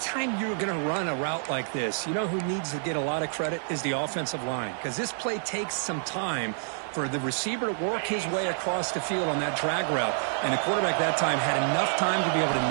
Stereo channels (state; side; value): silent; left; digital silence